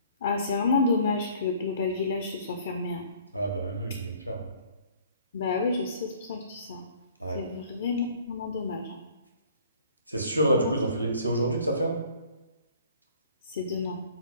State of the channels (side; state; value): both; inverted; correlation -0.54